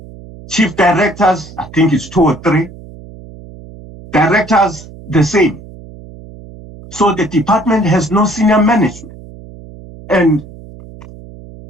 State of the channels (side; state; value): right; noise; hum, 18 dB below the sound